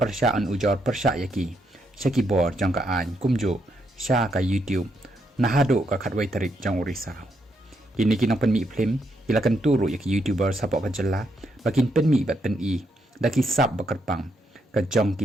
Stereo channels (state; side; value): normal; both; correlation 0.78